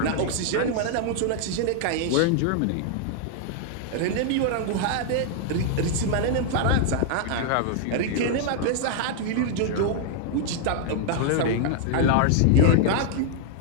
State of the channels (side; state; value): both; different; correlation 0.00